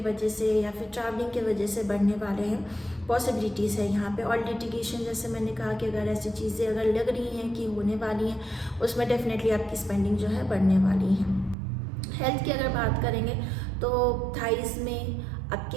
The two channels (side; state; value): left; drops out; at 11.6 s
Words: से या फिर ट्रैवलिंग के वजह से बढ़ने वाले हैं, पॉसिबिलिटीज़ है यहाँ पे। और लिटिगेशन, जैसे मैंने कहा कि अगर ऐसी चीज़ें अगर लग रही हैं कि होने वाली हैं, उसमें डेफिनेटली आपकी स्पेंडिंग जो है बढ़ने वाली है। हेल्थ की अगर बात करेंगे तो थाइस में